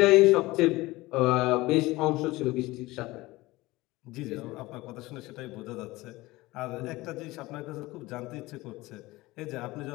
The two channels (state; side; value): quieter; right; 20.0 dB